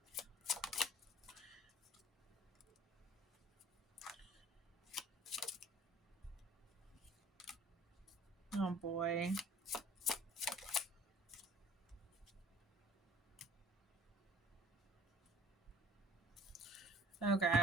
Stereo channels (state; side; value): normal; both; correlation 0.49